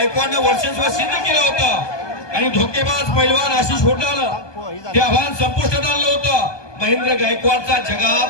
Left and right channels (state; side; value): late; right; 1.2 ms